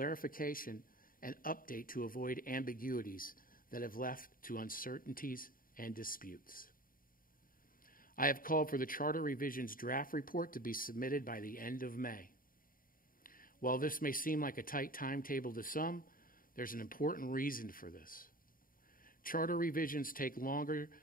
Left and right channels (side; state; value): right; late; 0.41 ms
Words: and update to avoid ambiguities that have left to uncertainties and disputes. I have called for the Charter Revision's draft report to be submitted by the end of May. While this may seem like a tight timetable to some, there's an important reason for this. Charter revisions take longer.